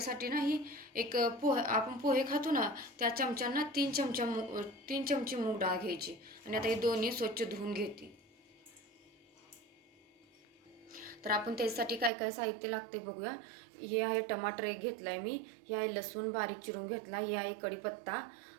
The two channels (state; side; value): drops out; left; at 12.1 s